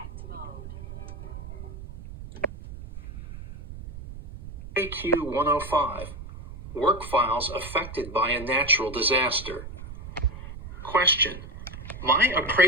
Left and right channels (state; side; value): noise; right; rumble, 12 dB below the sound